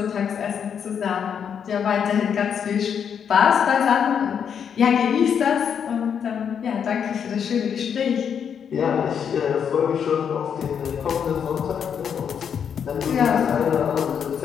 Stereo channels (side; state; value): right; quieter; 7.7 dB